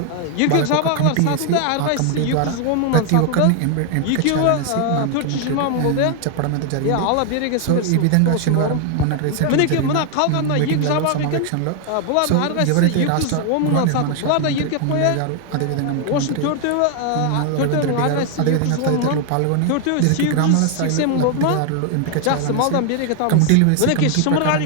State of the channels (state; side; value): different; both; correlation 0.00